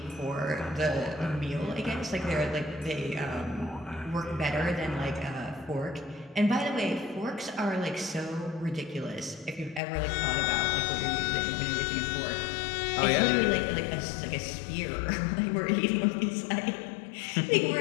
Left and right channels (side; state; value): right; drops out; at 9.8 s